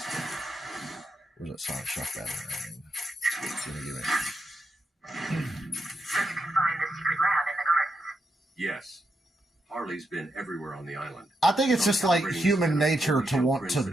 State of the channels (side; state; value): both; normal; correlation 0.83